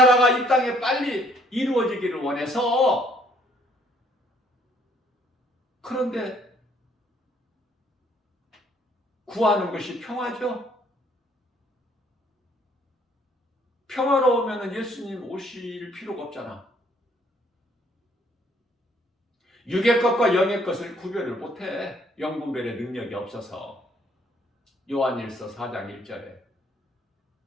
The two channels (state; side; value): normal; both; correlation 0.64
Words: 이 땅에 빨리 이루어지기를 원해서. 그런데 구하는 것이 평화죠. 평화로우면 예수님 오실 필요가 없잖아. 육의 것과 영의 것을 구별을 못해. 영분별의 능력이 없어서. 요한일서 4장 1절에